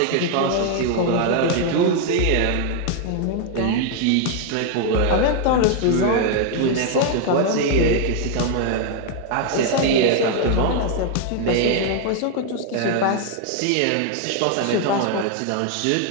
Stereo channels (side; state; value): both; different; correlation 0.00